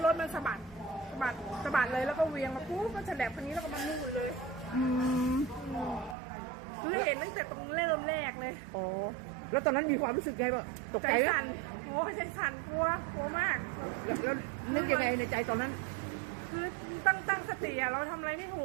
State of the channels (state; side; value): drops out; left; at 6.2 s